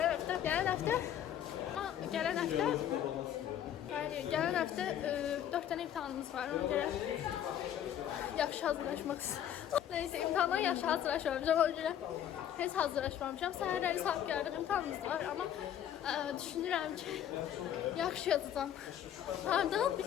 həftə 4 dənə imtahanımız var. Ona görə yaxşı hazırlaşmaq istəyirəm. Neyse, imtahandan yaxşı hazırlaşmamışam. Ona görə heç hazırlaşmamışam. Səhərləri saat gəldik, imtahanımız var. Amma düşünürəm ki, yaxşı yazacağam. Hardan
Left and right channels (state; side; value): quieter; right; 10.3 dB